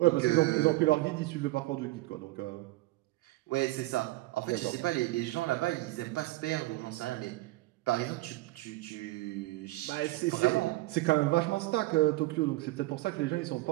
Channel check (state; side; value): quieter; left; 19.1 dB